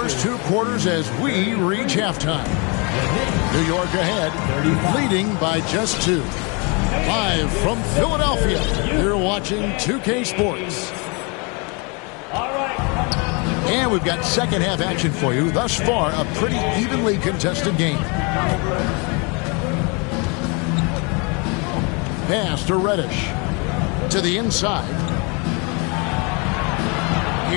2 quarters as we reach halftime. New York ahead, leading by just 2. Live from Philadelphia, you're watching 2K Sports. And we've got second half action for you. Thus far, a pretty evenly contested game. Pass to Reddish. To the inside.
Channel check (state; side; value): quieter; right; 31.6 dB